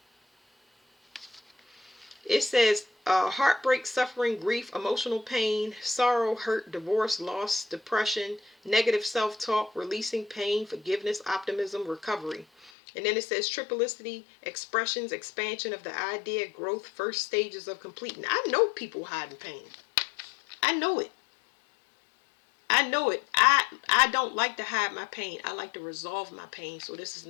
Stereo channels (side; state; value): right; drops out; at 12.7 s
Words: It says heartbreak, suffering, grief, emotional pain, sorrow, hurt, divorce, loss, depression, negative self-talk, releasing pain, forgiveness, optimism, recovery. And then it says triplicity, expressions, expansion of the idea, growth, first stages of completing. I know people hiding pain. I know it. I know it. I don't like to hide my pain. I like to resolve my pain. So this is